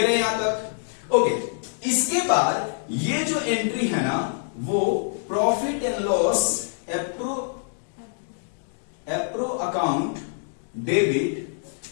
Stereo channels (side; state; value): right; silent; digital silence